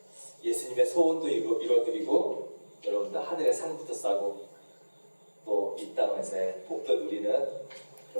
예수님의 소원도 이루어드리고 여러분들 하늘의 상부터 싸고 또 이 땅에서의 복도 누리는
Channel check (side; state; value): both; inverted; correlation -1.00